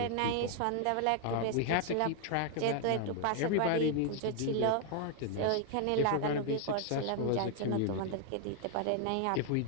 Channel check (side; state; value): both; different; correlation 0.00